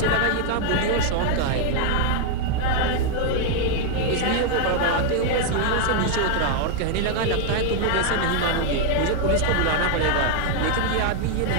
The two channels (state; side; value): different; both; correlation 0.00